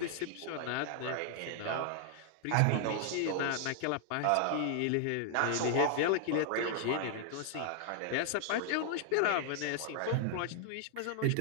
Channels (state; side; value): different; both; correlation 0.00